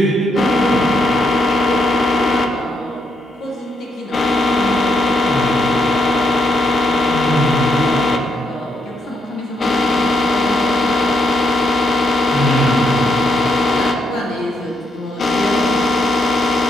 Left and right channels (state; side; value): normal; both; correlation 0.77